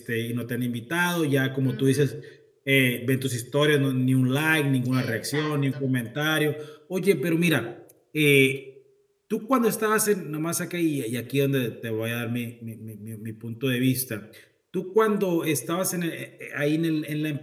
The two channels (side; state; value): both; identical; correlation 1.00